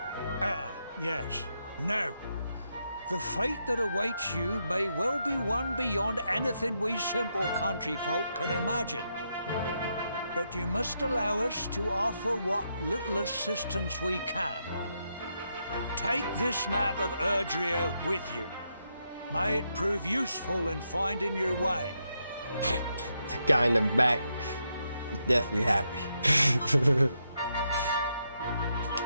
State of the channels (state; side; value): inverted; both; correlation -0.81